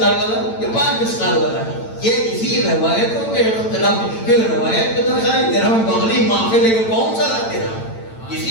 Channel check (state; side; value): late; right; 8.9 ms